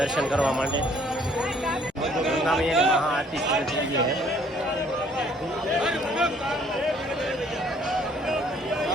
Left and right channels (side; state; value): both; normal; correlation 0.60